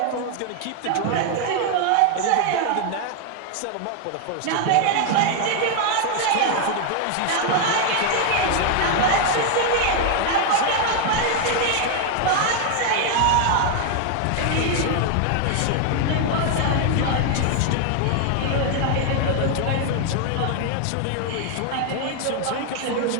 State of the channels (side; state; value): both; different; correlation 0.00